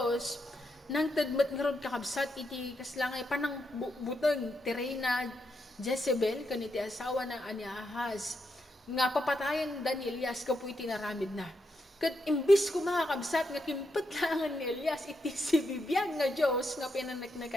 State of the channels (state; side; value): normal; both; correlation 0.82